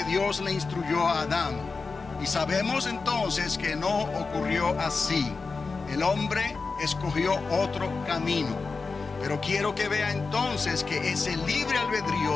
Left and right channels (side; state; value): right; quieter; 4.4 dB